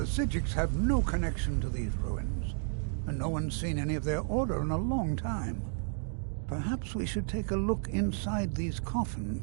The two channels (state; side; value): silent; left; digital silence